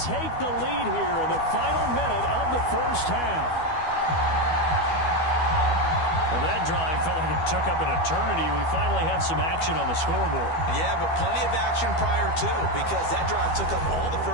take the lead here in the final minute of the first half. Well, that drive felt like it took up an eternity. We finally have some action on the scoreboard. Yeah, but plenty of action prior to, because that drive took up all the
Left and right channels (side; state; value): right; late; 12 ms